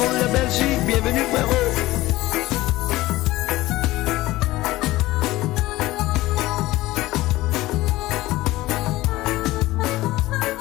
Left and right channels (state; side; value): quieter; right; 17.8 dB